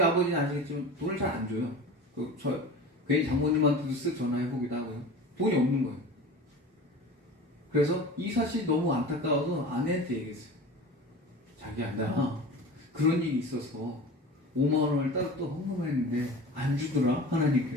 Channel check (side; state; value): both; normal; correlation 0.35